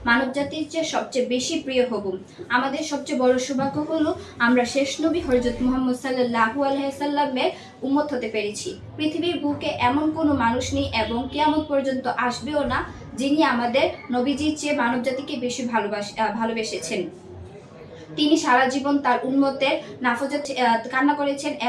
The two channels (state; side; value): identical; both; correlation 1.00